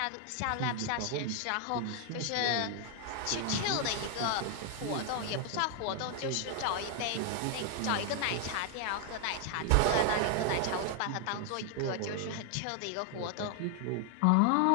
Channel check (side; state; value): both; different; correlation 0.00